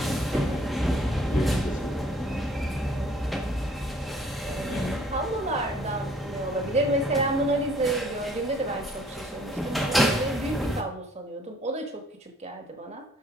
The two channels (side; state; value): both; normal; correlation 0.59